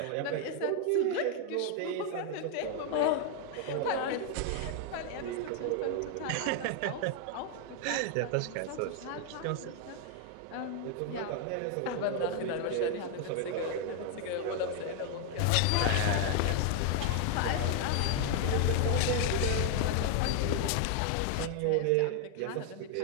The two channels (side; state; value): both; different; correlation 0.00